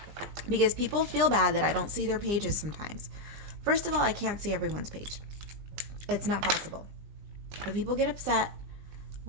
because people feel bad that I don't see their pages sometimes. First of all, I can't see everyone's page. It's not possible. But people get upset.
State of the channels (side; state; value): left; late; 20 ms